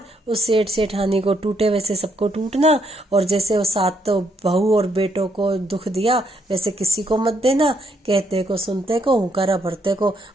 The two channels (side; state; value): both; normal; correlation 0.74